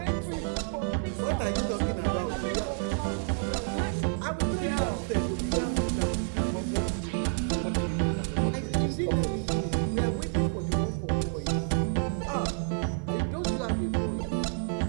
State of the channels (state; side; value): silent; left; 58 dB below the other